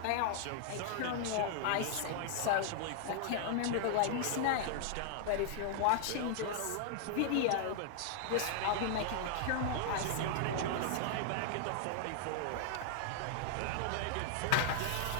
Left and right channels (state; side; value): different; both; correlation -0.01